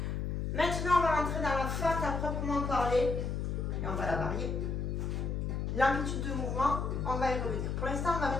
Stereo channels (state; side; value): noise; left; hum, 1 dB below the sound